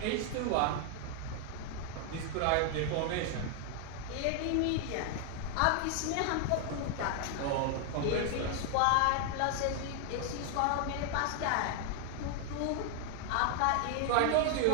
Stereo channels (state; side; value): different; both; correlation 0.00